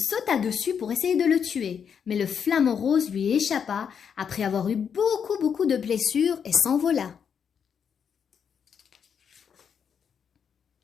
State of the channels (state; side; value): quieter; right; 7.3 dB